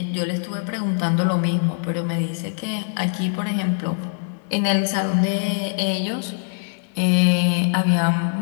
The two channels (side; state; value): right; silent; digital silence